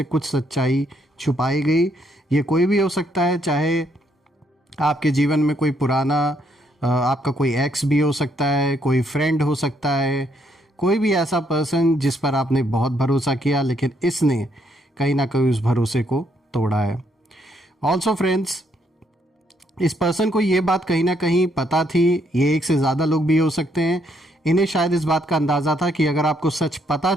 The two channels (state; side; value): normal; both; correlation 0.73